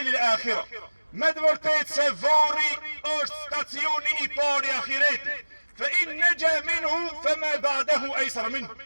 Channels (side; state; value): both; inverted; correlation -1.00